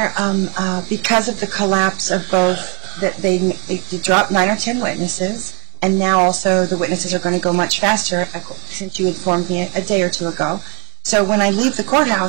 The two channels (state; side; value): quieter; left; 36.7 dB